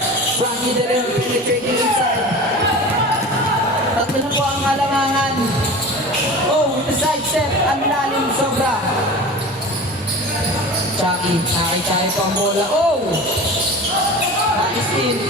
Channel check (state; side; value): normal; both; correlation 0.35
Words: Frankie De Leon penetrating inside. Tatlo na po ang alangangan. Oh, with the side step. Ang lalim sobra. Chucky, nakakitay po ang bola. Oh! Nais-steal.